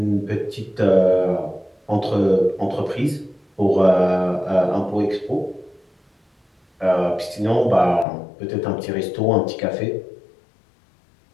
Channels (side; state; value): right; drops out; at 8.1 s